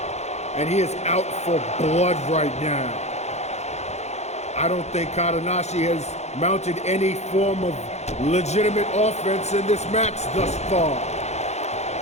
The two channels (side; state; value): right; late; 0.32 ms